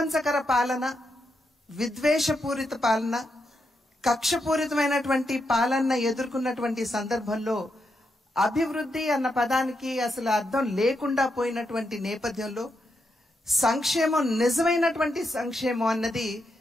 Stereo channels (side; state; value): both; normal; correlation 0.83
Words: పాలన, విద్వేషపూరిత పాలన, కక్షపూరితమైనటువంటి పాలన ఎదుర్కొన్నటువంటి సందర్భంలో అభివృద్ధి అన్న పదానికి అసలు అర్థం లేకుండా పోయినటువంటి నేపథ్యంలో సంక్షేమం, నిజమైనటువంటి సంక్షేమం అన్నది